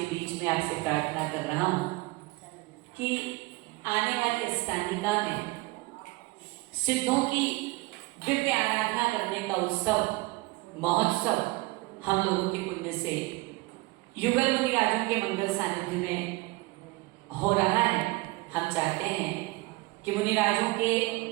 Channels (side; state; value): left; quieter; 22.9 dB